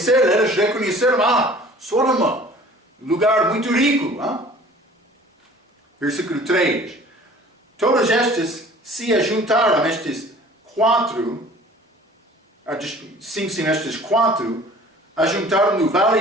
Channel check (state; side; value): normal; both; correlation 0.48